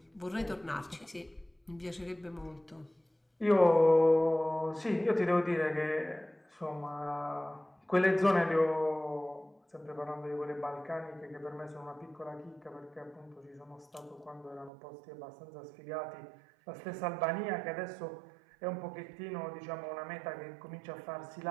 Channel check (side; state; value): left; drops out; at 14.7 s